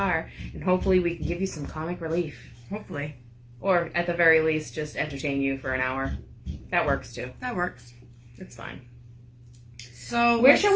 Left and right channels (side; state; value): both; identical; correlation 1.00